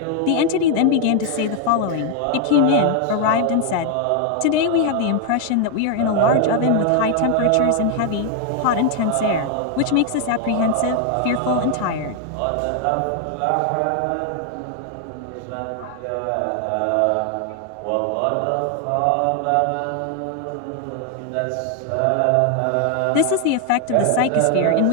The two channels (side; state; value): both; different; correlation 0.00